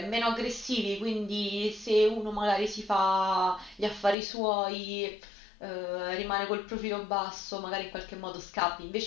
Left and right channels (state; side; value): drops out; right; at 4.2 s